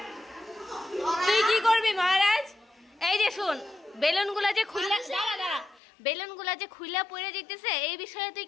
তুই কি করবি মহারাজ? এই যে শুন, বেলুনগুলা যে খুইলা দাঁড়া বেলুনগুলা যে খুইলা পড়ে যেতেছে, এই বিষয়ে তুই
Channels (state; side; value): drops out; right; at 5.8 s